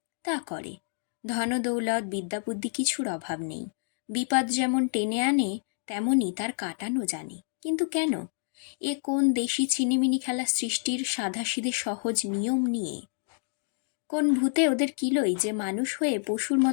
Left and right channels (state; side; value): silent; right; digital silence